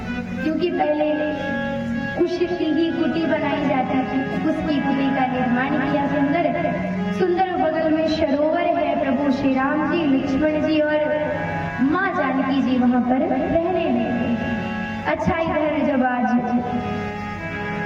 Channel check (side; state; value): both; identical; correlation 1.00